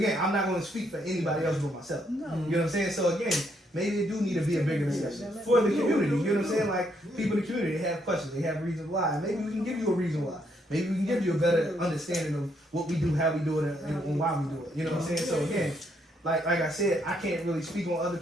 I'm not going to speak for anybody else but myself. You know what I'm saying? So again, maybe it do need to be a bigger discussion for the community. You know what I'm saying? Like people in the community, they have questions, they have reasons why. Maybe we can give you a reason why. Maybe we can give you a better understanding of what we do, how we do it, and why we do it. You know what I'm saying? So again, like I said, I can't really speak on other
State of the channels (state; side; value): normal; both; correlation 0.74